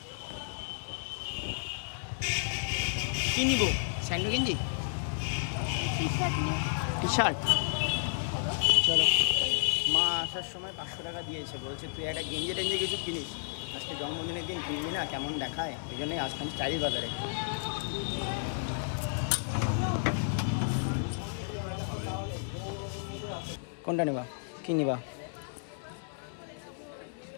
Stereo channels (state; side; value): silent; right; 56 dB below the other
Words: কি নিবো? স্যান্ডো গেঞ্জি, টি শার্ট। চলো, মা আসার সময় 500 টাকা দিয়েছে, বলছে তুই একটা গেঞ্জি টেঞ্জি কিছু কিনিস, আজকে জন্মদিনের দিন কিনবি না, কেমন দেখায়, ওই জন্যই আসলাম স্টাইল বাজারে। কোনটা নেবা, কি নিবা?